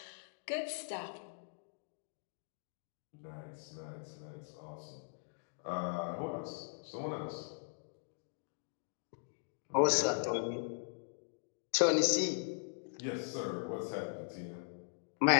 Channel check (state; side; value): silent; right; digital silence